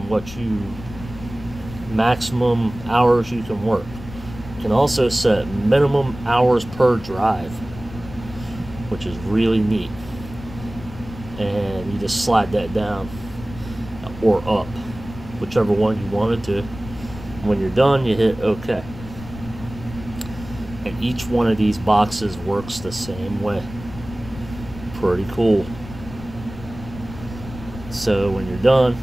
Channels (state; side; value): noise; left; rumble, 14 dB below the sound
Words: what maximum hours you can work. You can also set minimum hours per drive, which is really neat. And you just slide that down or up, whichever one you wanted to. When you're done, you hit OK. And each one of these boxes works the same way. Pretty cool. So when you're done,